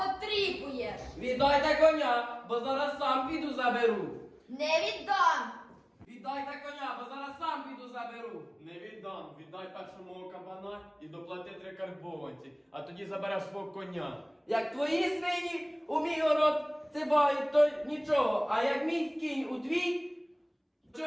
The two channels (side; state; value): both; identical; correlation 1.00